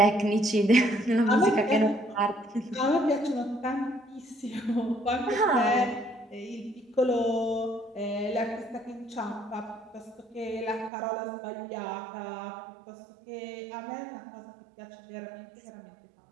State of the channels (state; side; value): drops out; left; at 10.9 s